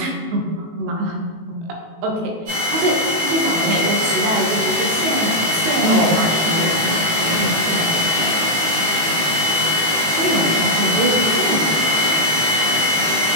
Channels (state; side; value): late; left; 18 ms